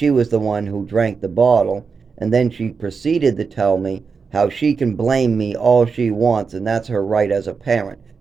was the one who drank the bottle, and then she proceeded to tell me how she can blame me all she wants, and that's her right as a parent.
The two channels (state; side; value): quieter; left; 5.3 dB